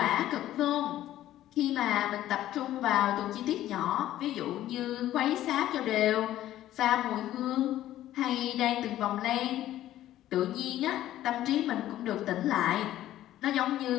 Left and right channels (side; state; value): right; quieter; 13.4 dB